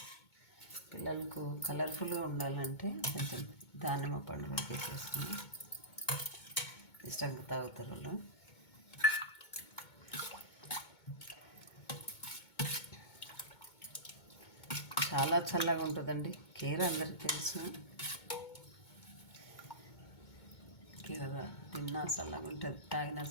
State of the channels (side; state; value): right; late; 2.2 ms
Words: పిల్లలకు కలర్ఫుల్గా ఉండాలంటే కొంచెం దానిమ్మ పండు వేసేస్తున్నాం, ఇష్టంగా తాగుతారు వాళ్ళు. చాలా చల్లగా ఉంటుందండి కీర, అందరికీ తెలుసు. కీర తిన్నా చల్లగా ఉంటుంది, తాగినా